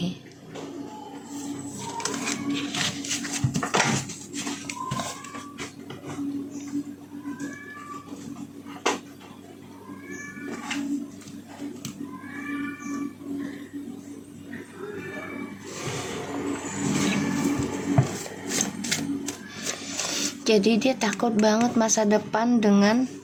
Jadi dia takut banget masa depan dengan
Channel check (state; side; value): identical; both; correlation 1.00